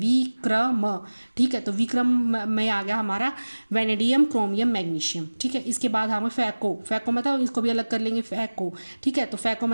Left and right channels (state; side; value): inverted; both; correlation -1.00